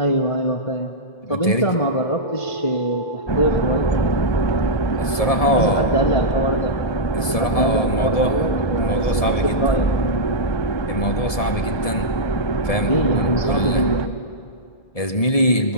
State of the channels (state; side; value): late; right; 1.7 ms